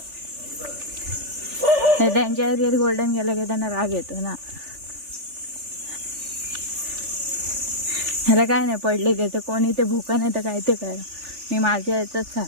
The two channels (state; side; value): late; left; 3.4 ms